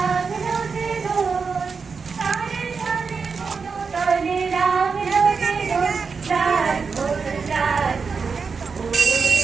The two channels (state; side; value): quieter; left; 5.2 dB